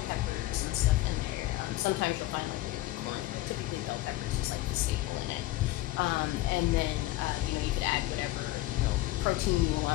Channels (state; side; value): quieter; right; 17.3 dB